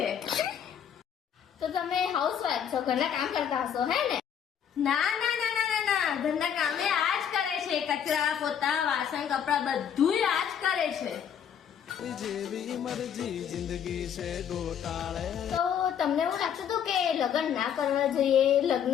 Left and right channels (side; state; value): right; quieter; 8.6 dB